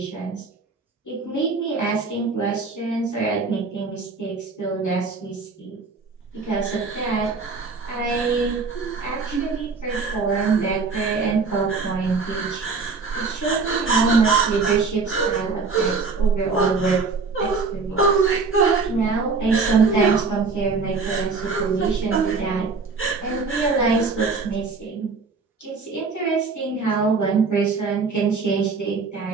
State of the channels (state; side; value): quieter; left; 4.4 dB